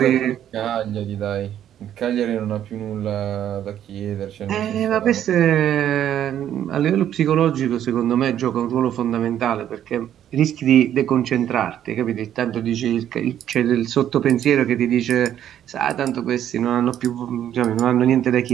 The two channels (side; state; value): left; quieter; 10.7 dB